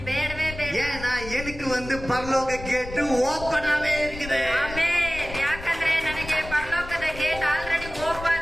ಬೇಡವೇ ಬೇಡ. ஏன்னா எனக்கு பரலோக கேட்டு ஓப்பனாவே இருக்குது. ಆಮೆನ್. ಯಾಕಂದ್ರೆ ನನಗೆ ಪರಲೋಕದ ಗೇಟ್ ಆಲ್ರೆಡಿ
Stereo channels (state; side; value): noise; left; rumble, 12 dB below the sound